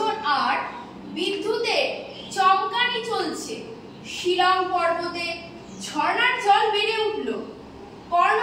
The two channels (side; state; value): both; identical; correlation 1.00